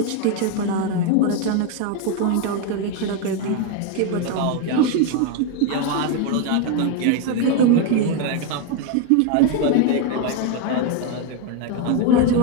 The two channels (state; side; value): different; both; correlation 0.02